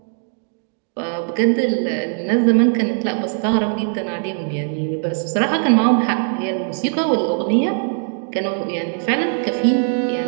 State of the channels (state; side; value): silent; left; 66 dB below the other